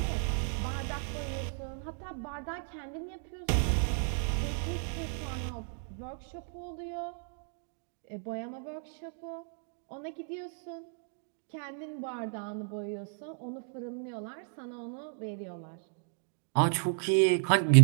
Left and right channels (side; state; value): left; silent; 56 dB below the other